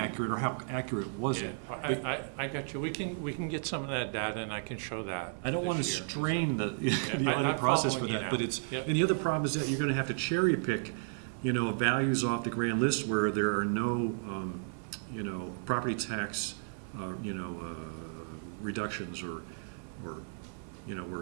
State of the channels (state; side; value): silent; left; 56 dB below the other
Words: or how accurate was it? I got you. We can get some of that data, and I can show that. I don't want to this year. strain the I'm audit process for following you that, now. but it's, Yep. and the other problem is that you're going to have to cherry pick, you know, values off the grand list where there are no, you know, property tax, you know, reductions or, you know,